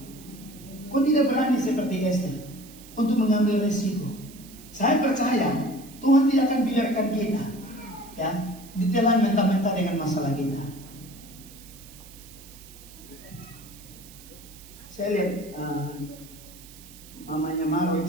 Kau tidak berani seperti Esther untuk mengambil resiko. Saya percaya Tuhan tidak akan biarkan kita ya ditelan mentah-mentah dengan masalah kita. Saya lihat mamanya Marwin,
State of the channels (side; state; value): right; noise; hiss, 20 dB below the sound